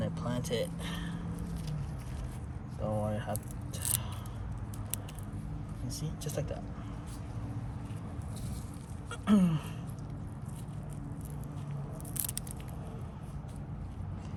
I plant it. Don't worry, have. You see, just like that.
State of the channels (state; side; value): identical; both; correlation 1.00